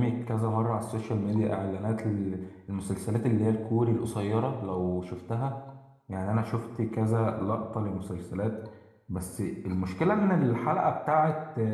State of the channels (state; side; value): identical; both; correlation 1.00